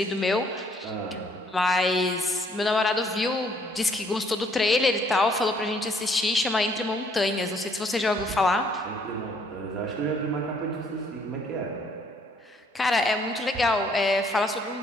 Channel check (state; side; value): normal; both; correlation 0.64